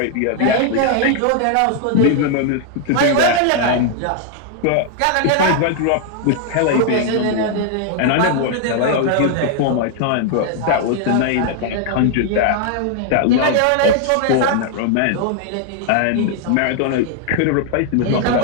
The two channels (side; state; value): both; different; correlation 0.00